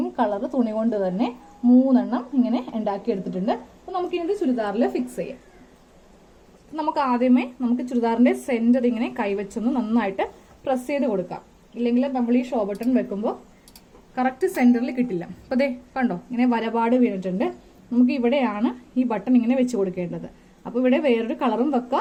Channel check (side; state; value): both; identical; correlation 1.00